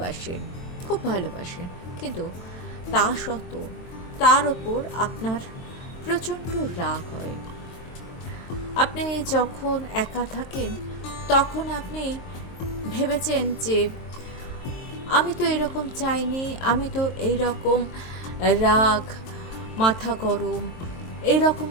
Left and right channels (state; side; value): late; right; 23 ms